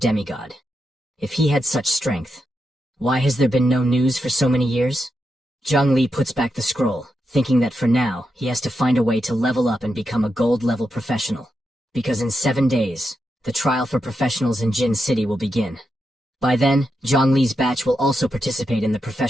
If he had such strength, why has there been no news for so many years? Zhang Li puts back the scroll, thinking that for now, he has to find a way to level up and become a gold-level professional. Because in 7 days, the trial for professionals in Jin City will begin. By then, Zhang Li's batch will also participate in the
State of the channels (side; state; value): both; normal; correlation 0.86